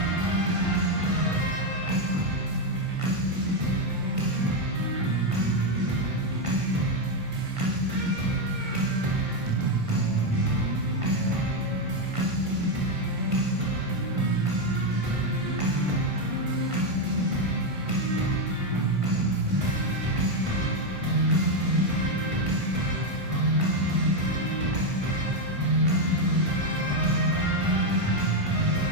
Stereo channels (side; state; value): left; late; 1.5 ms